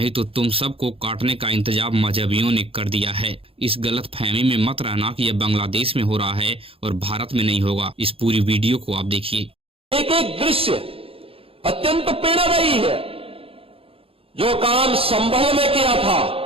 तो तुम सबको काटने का इंतजाम मजहबियों ने कर दिया है। इस गलत फहमी में मत रहना कि यह बांग्लादेश में हो रहा है और भारत में नहीं होगा। इस पूरी वीडियो को आप देखिए। एक एक दृश्य अत्यंत प्रेरणादायी है। जो काम संभल में किया था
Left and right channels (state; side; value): late; left; 0.27 ms